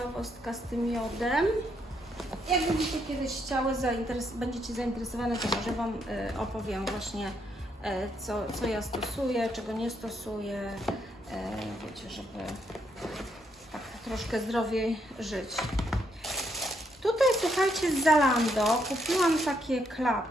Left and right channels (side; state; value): both; normal; correlation 0.75